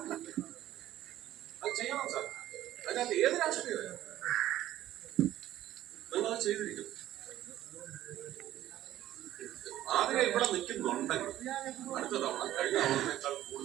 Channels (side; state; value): left; quieter; 13.5 dB